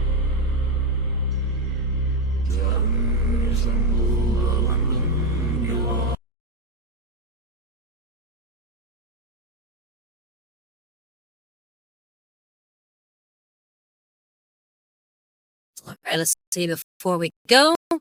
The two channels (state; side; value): normal; both; correlation 0.32